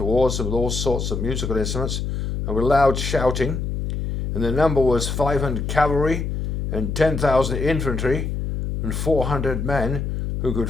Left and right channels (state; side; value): noise; left; hum, 3 dB below the sound